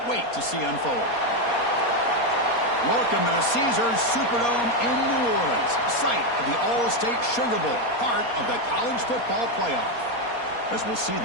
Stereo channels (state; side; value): late; right; 4.2 ms